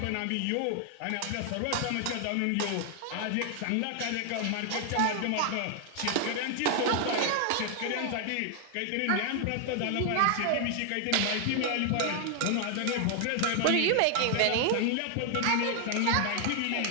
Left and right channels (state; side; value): different; both; correlation 0.00